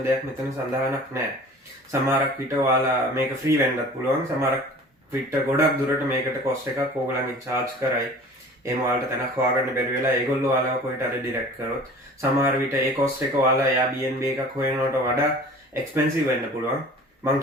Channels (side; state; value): both; normal; correlation 0.44